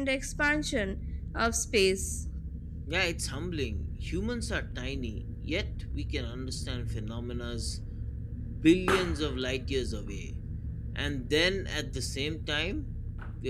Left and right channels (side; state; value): both; identical; correlation 1.00